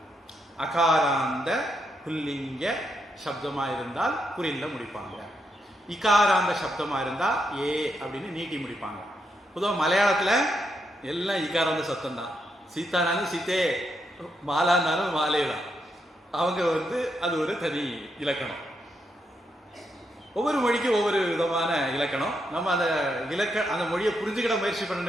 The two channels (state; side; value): normal; both; correlation 0.81